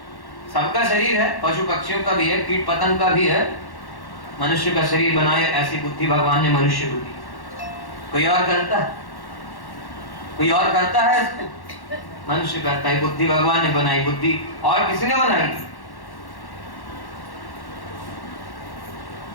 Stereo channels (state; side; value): late; right; 1.1 ms